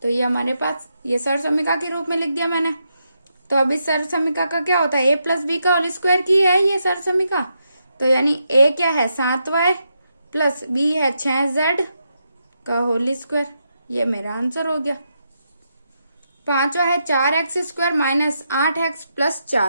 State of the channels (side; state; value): both; inverted; correlation -0.82